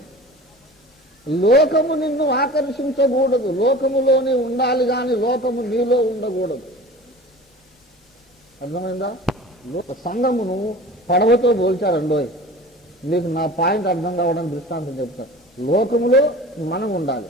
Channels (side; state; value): both; normal; correlation 0.39